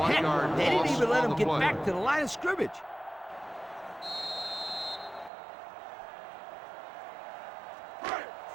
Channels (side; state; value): left; drops out; at 5.3 s